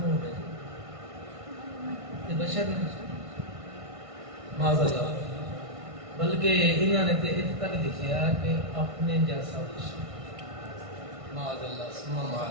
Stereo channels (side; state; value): left; late; 1.5 ms